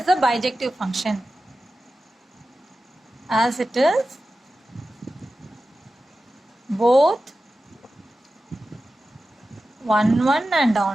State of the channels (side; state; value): both; normal; correlation 0.94